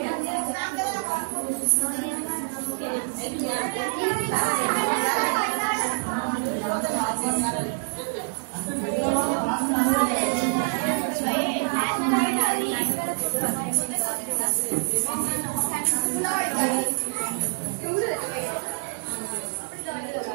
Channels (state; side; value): silent; left; digital silence